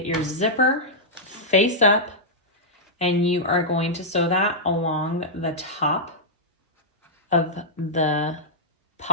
your zipper face up, and you are going to sew that along the top of the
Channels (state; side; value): normal; both; correlation -0.10